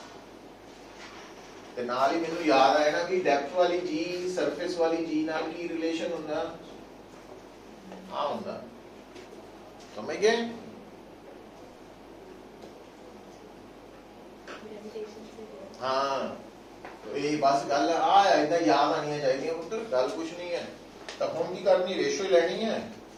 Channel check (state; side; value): identical; both; correlation 1.00